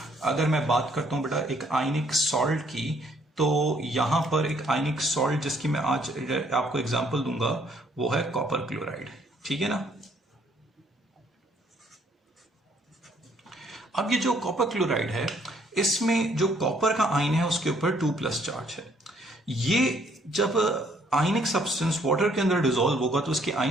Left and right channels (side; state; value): both; normal; correlation 0.65